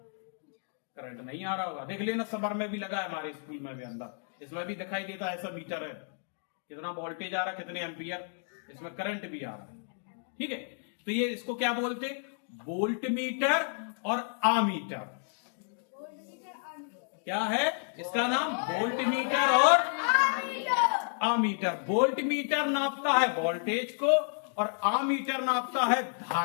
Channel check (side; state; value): right; silent; 57 dB below the other